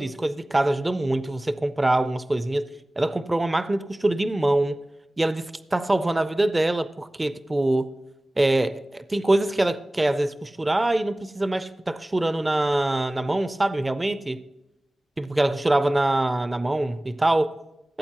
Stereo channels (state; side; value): normal; both; correlation 0.98